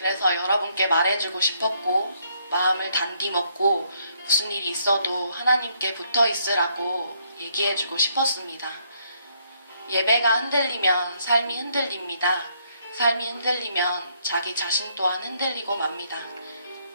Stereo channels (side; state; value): both; inverted; correlation -0.71